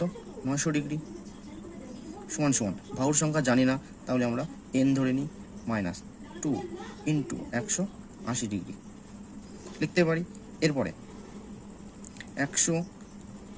900 ডিগ্রি সমান সমান বাহুর সংখ্যা জানি না, তাহলে আমরা এন ধরে নিই, মাইনাস 2 ইন্টু 180 ডিগ্রি লিখতে পারি। এরপরে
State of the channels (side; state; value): both; identical; correlation 1.00